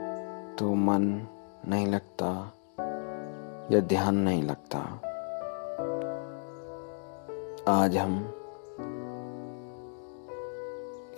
तो मन नहीं लगता या ध्यान नहीं लगता। आज हम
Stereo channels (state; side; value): silent; right; 56 dB below the other